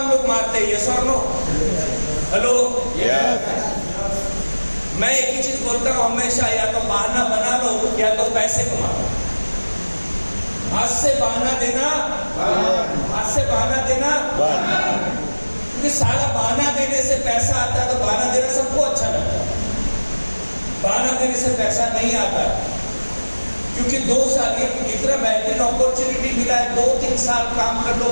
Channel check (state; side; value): inverted; both; correlation -1.00